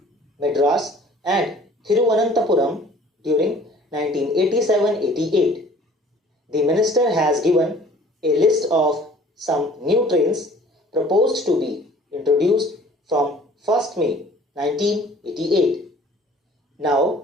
Madras and Thiruvananthapuram during 1987-88. The minister has given a list of some new trains proposed to be introduced from 1st May 1988.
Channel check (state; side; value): normal; both; correlation 0.51